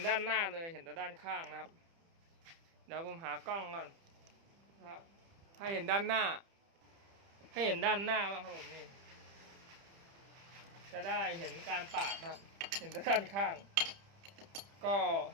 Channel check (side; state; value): left; late; 30 ms